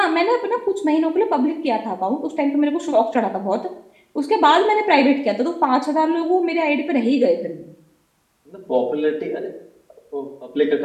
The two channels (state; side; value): identical; both; correlation 1.00